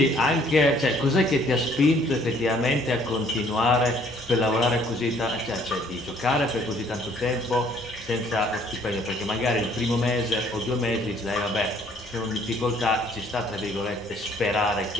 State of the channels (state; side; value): normal; both; correlation 0.61